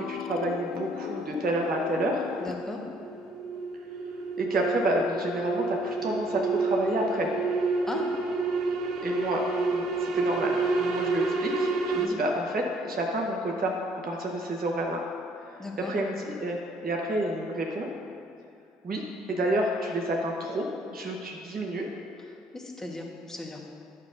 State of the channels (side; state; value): both; normal; correlation 0.62